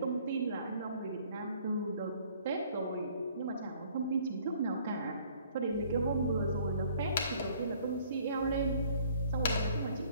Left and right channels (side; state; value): both; inverted; correlation -0.58